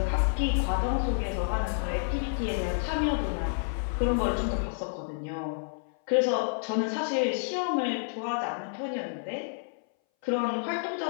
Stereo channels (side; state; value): right; silent; 58 dB below the other